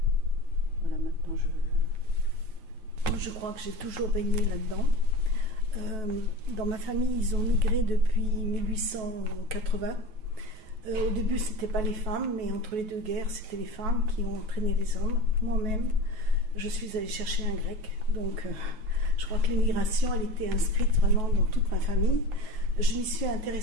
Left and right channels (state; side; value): late; left; 9.2 ms